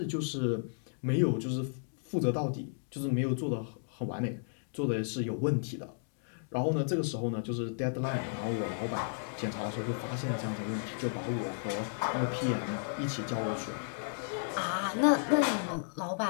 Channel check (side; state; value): right; silent; digital silence